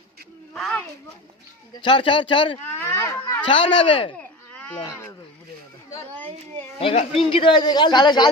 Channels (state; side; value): normal; both; correlation 0.29